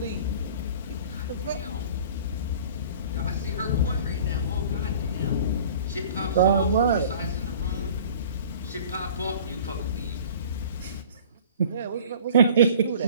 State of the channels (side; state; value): both; inverted; correlation -0.46